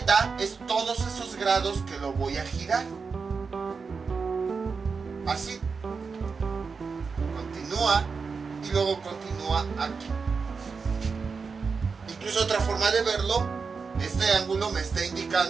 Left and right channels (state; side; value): quieter; left; 5.1 dB